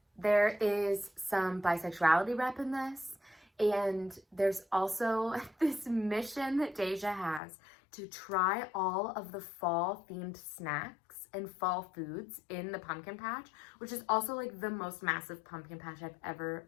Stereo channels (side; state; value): right; drops out; at 7.4 s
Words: There is some bisexuality rep in this, and there's also this mission that Deja has to try all of the fall themed snacks and fall foods in the pumpkin patch, which is also like the most massive pumpkin patch I've ever